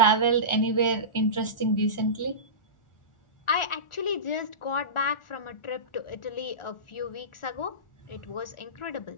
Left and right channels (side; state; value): right; late; 1.4 ms